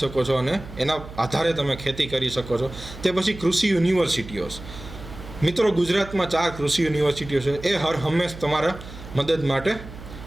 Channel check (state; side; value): noise; right; hum, 14 dB below the sound